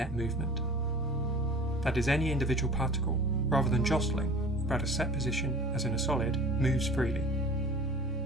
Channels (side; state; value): both; normal; correlation 0.42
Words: movement. That is, any individual particle, rather than jostling about a set position as in a solid, moves freely.